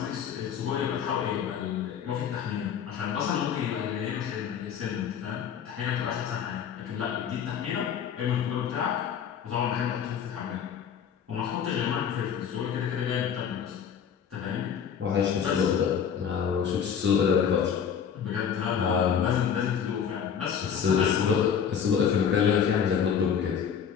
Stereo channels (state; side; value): quieter; right; 7.8 dB